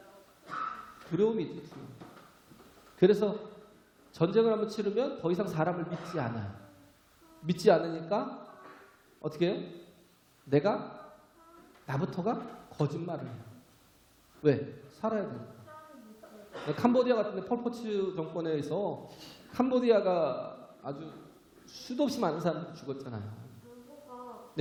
두려움이 있죠. 두려움. 그래서 전쟁을 한번 치르면 더 이상 사람을 믿지 않아요. 믿지 않으니까 어떻게 해요? 나부터가 거짓말을 해요. 왜? 살아야 되니까. 캄보디아 같은 데 폴포츠 정권에 의해서 캄보디아가 아주 수도 없이 많은 사람들이 죽었잖아요.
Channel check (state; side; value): identical; both; correlation 1.00